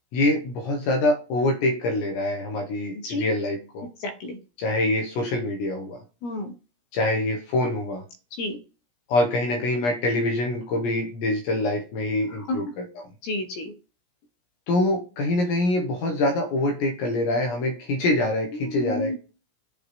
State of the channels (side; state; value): right; late; 17 ms